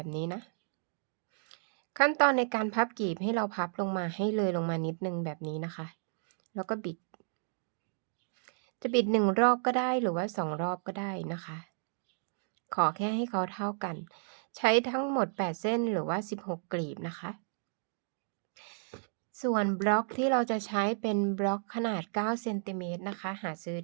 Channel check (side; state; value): left; silent; digital silence